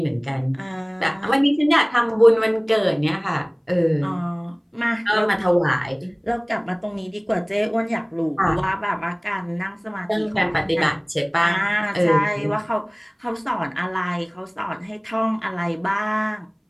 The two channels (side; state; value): both; identical; correlation 1.00